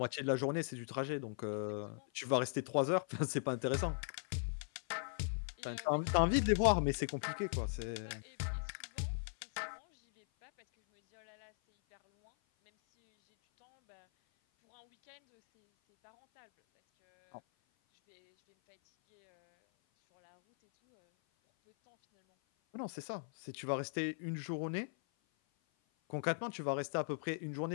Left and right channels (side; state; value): right; silent; 52 dB below the other